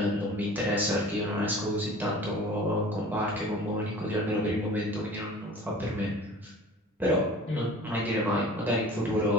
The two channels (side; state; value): both; normal; correlation 0.43